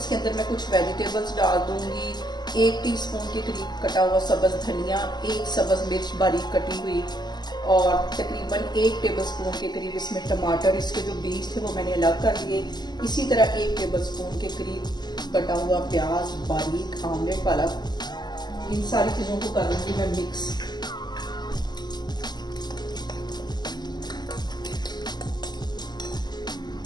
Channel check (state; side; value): late; right; 0.21 ms